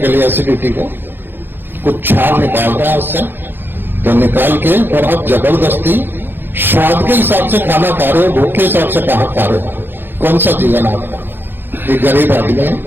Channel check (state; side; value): late; left; 0.10 ms